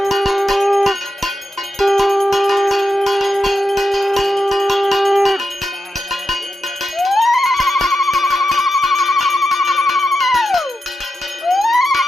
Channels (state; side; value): normal; both; correlation 0.87